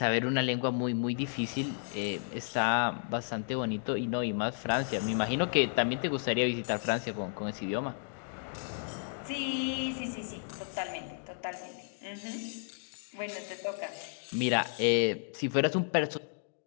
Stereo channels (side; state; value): right; silent; digital silence